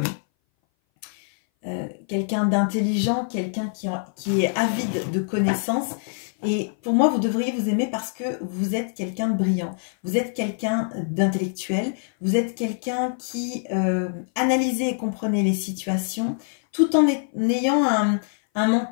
quelqu'un d'intelligent, quelqu'un qui est avide de connaissances. Et pour moi, vous devriez vous aimer parce que vous êtes quelqu'un de brillant. Vous êtes quelqu'un d'intellectuel. Vous êtes quelqu'un qui analysez et comprenez les situations tout en ayant un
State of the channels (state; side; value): silent; right; 59 dB below the other